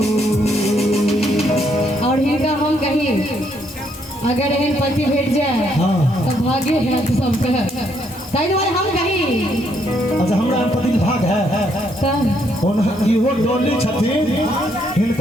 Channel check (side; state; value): right; noise; hiss, 27 dB below the sound